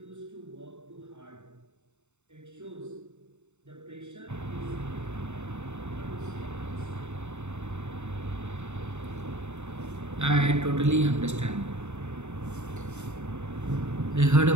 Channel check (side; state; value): left; late; 0.83 ms